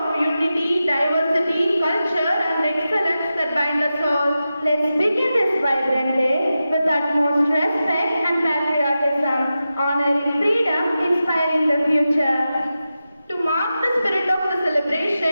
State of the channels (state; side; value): inverted; both; correlation -0.92